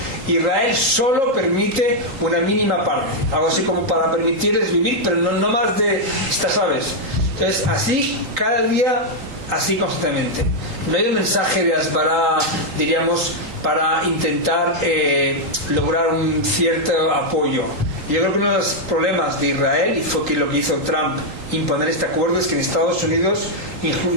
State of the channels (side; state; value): left; late; 3.8 ms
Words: Israel solo permite una mínima parte. Algo así como para permitirles vivir, pero no más de estas aves. Entonces, así, cada día, así constantemente. No hay un mensaje de Asbará, diríamos, para intentar lograr un cierto apoyo. Yo creo que uno de los problemas de Israel, y fue que lo que hizo Trump, imponer este acuerdo, es que en Estados Unidos,